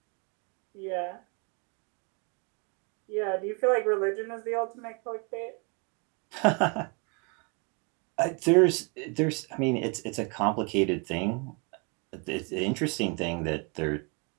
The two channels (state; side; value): quieter; left; 33.0 dB